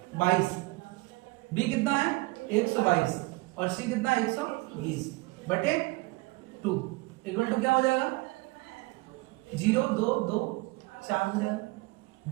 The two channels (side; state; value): left; quieter; 24.0 dB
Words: 22, बी कितना है? 122, और सी कितना है? 120 बटे 2 इक्वल टू क्या हो जाएगा? 0 2 2 4 हो जाएगा।